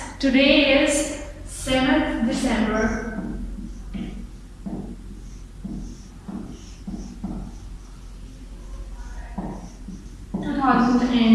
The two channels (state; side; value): identical; both; correlation 1.00